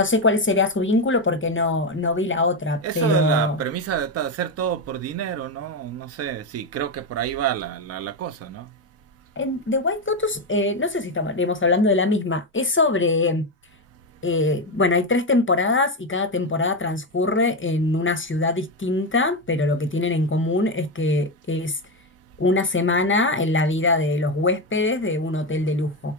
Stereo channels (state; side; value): normal; both; correlation 0.11